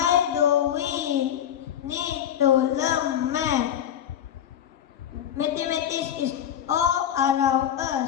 do we need to learn math? Mathematics is all around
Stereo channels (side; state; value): right; quieter; 10.0 dB